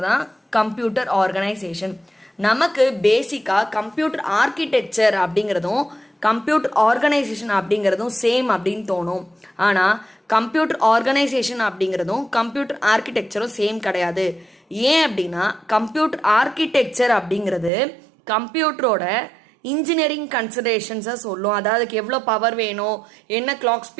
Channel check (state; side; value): drops out; left; at 17.7 s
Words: கம்ப்யூட்டர் ஆர்கனைசேஷன். நமக்கு பேசிக்காக கம்ப்யூட்டர் ஆர்கிடெக்சர் அப்படிங்கிறதும் கம்ப்யூட்டர் ஆர்கனைசேஷன் அப்படிங்கிறதும் சேம் அப்படின்னு தோணும். ஆனால் கம்ப்யூட்டர் ஆர்கனைசேஷன் அப்படிங்கிறதும் கம்ப்யூட்டர் ஆர்கிடெக்சரும் சேம் கிடையாது. ஏன் அப்படின்னா, கம்ப்யூட்டர் ஆர்கிடெக்சர் அப்படிங்கிறது கம்ப்யூட்டரோட இன்ஜினியரிங் கன்சிடரேஷன்ஸை சொல்லும். அதாவது எவ்வளோ பவர் வேணும், என்ன கிளாக்